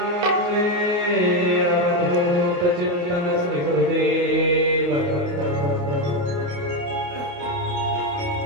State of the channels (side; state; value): left; late; 28 ms